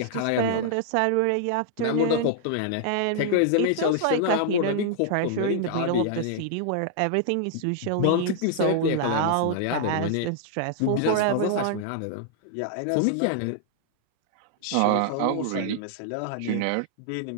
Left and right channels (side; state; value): both; different; correlation -0.01